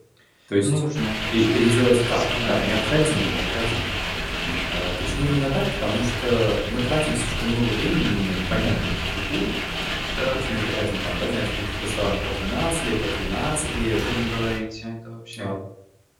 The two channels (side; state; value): both; identical; correlation 1.00